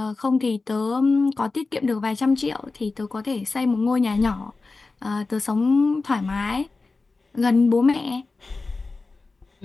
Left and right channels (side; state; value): right; quieter; 3.8 dB